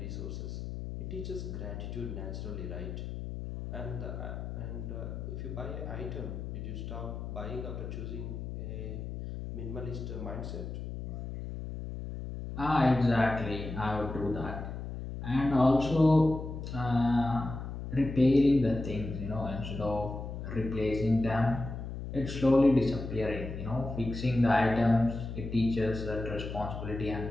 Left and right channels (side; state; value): left; noise; hum, 7 dB below the sound